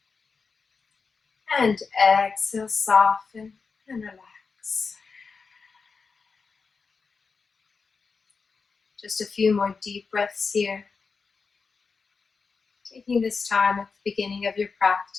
And exhale, soften and relax. Just a few more deep breaths here. Taking this time at the beginning of your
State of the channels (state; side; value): quieter; right; 4.9 dB